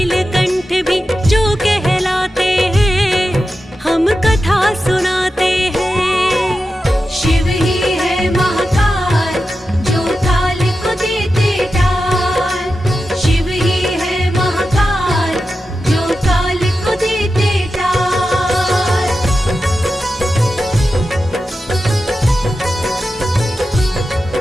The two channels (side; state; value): both; normal; correlation 0.91